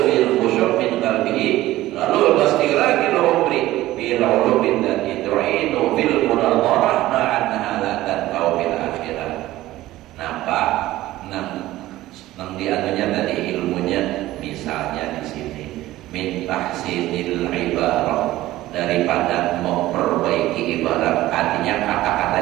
fil khusyuk min qalbihi. Lalu pasti lagi umri bil ulubin dan idrinu fil munadharah ma'annaha la tanfa'u fil akhirah. Nampak nang dianunya tadi ilmunya misalnya di sini min tahsinil ibarah, daripada memperbaiki ibarat, artinya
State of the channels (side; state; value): left; quieter; 16.1 dB